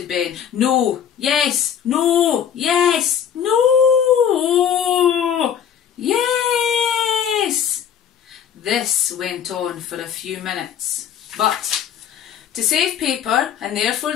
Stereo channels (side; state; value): right; quieter; 8.7 dB